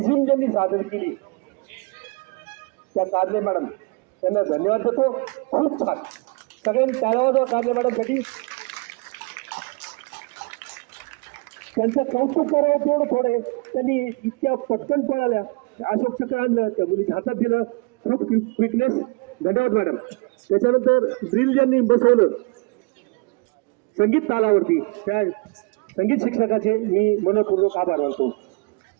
ज्यांनी सादर केली त्या कारले मॅडम त्यांना धन्यवाद देतो. खूप छान, सगळ्यांनी टाळ्या वाजवा कारले मॅडमसाठी. त्यांचं कौतुक करावं तेवढं थोडे, त्यांनी इतक्या पटकन पळाल्या, अशोक चक्र आणलं, त्या मुलीच्या हातात दिलं, खूप क्विकनेस. धन्यवाद मॅडम. त्याच्यानंतर ड्रिल ज्यांनी बसवलं संगीत तालावरती, त्या संगीत शिक्षकाचे मी मनपूर्वक आभार मानतो.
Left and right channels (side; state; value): left; quieter; 28.0 dB